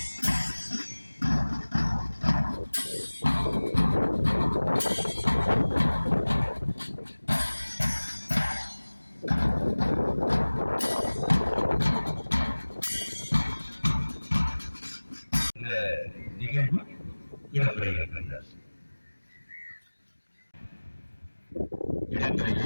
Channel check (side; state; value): both; inverted; correlation -1.00